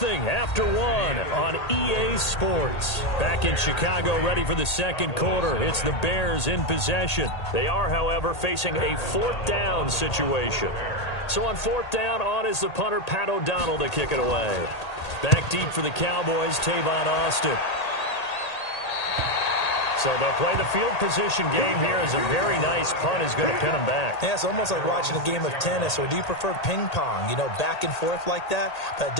after 1 on EA Sports. Back in Chicago, ready for the second quarter. It's the Bears in possession. They are, however, facing a fourth down situation. So on fourth down, on is the punter, Pat O'Donnell, to kick it away. Back deep for the Cowboys, Tavon Austin. So they'll play the field position game here as a very nice punt is going to pin them back. Yeah, it's almost like watching a game of tennis, or do you prefer ping pong? You know, back and forth like that? That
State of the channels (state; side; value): late; right; 1.8 ms